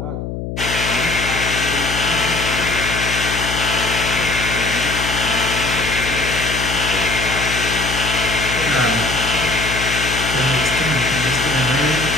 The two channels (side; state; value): left; noise; hum, 6 dB below the sound